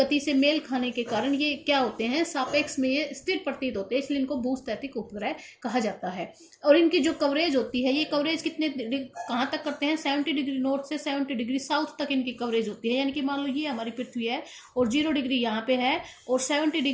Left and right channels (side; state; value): both; identical; correlation 1.00